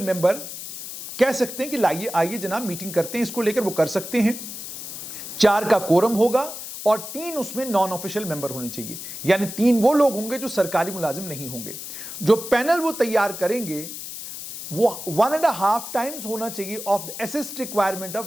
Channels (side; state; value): left; noise; hiss, 9 dB below the sound